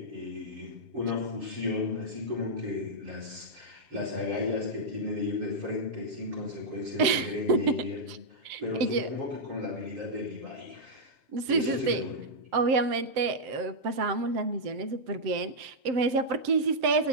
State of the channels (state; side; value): late; left; 7.7 ms